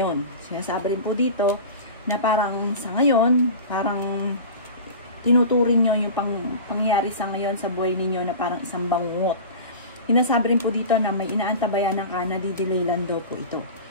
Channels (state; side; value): inverted; both; correlation -0.33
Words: Sinasabi rin po dito na parang sa ngayon, parang tinuturing nyo yung pangyayari sa ngayon sa buhay ninyo na parang isang bangungot. Sinasabi rin po dito na may inaantabayanan ka na didelay lang daw po ito.